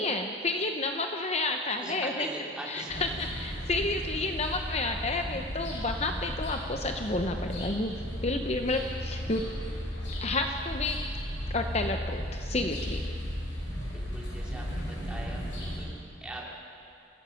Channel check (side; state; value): both; normal; correlation 0.43